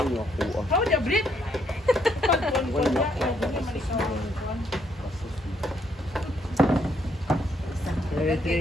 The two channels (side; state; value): both; normal; correlation 0.72